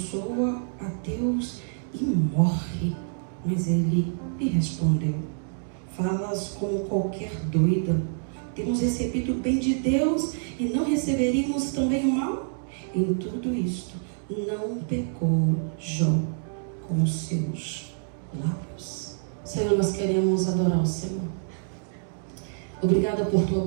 a Deus e morre. Mas ele lhe respondeu: falas como qualquer doida. Temos recebido o bem de Deus e não receberíamos também o mal? Em tudo isto não pecou Jó com os seus lábios. Senhor, nós queremos adorar o Senhor. Obrigada por tua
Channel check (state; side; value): silent; left; digital silence